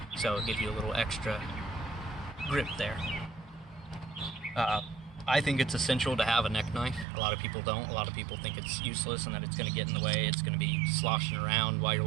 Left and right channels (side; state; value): left; drops out; at 7.1 s